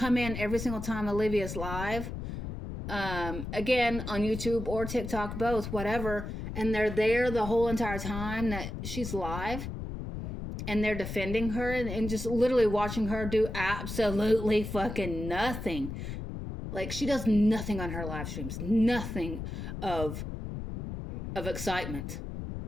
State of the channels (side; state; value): left; noise; rumble, 6 dB below the sound